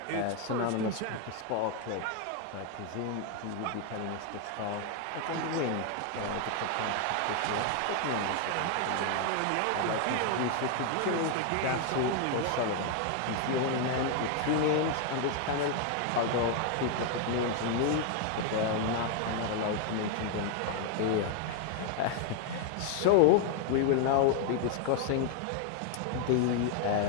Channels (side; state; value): both; different; correlation 0.00